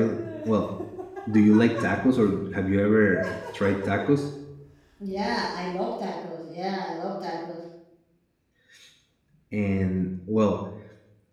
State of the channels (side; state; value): both; identical; correlation 1.00